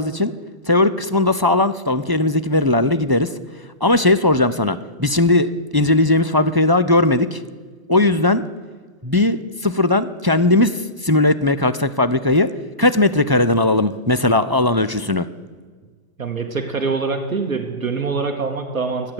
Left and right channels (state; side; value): late; left; 1.0 ms